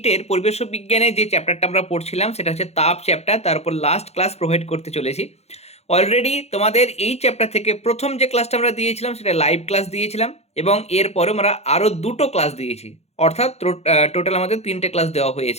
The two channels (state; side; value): late; right; 0.31 ms